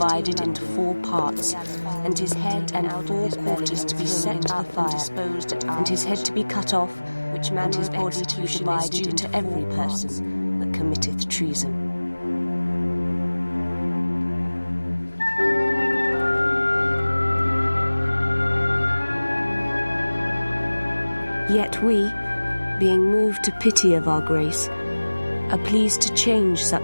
into 4 parts, and his head and 4 quarters to be set up and disposed, and his head to be cut off, which man his body to be divided into every person that committeth treason. Yet we, being moved to pity of our grace, are pleased to change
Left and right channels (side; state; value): both; inverted; correlation -1.00